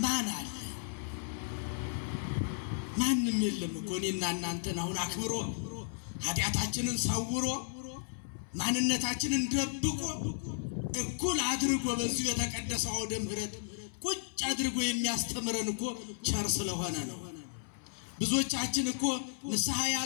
ማን አለ? ማንም የለም እኮ። እኔና እናንተን አሁን አክብሮ ኃጢአታችንን ሰውሮ ማንነታችንን ደብቆ እኩል አድርጎ በዚህ የተቀደሰው አውደ ምሕረት ቁጭ አድርጎ የሚያስተምረን እኮ ቸር ስለሆነ ነው። ብዙዎቻችን እኮ ንስሐ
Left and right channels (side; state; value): right; silent; 55 dB below the other